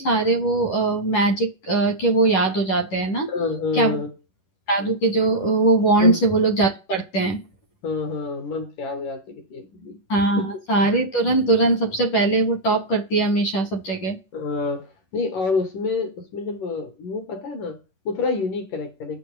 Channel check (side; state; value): right; late; 11 ms